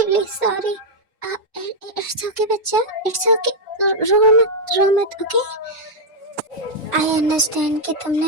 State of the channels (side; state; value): both; normal; correlation -0.02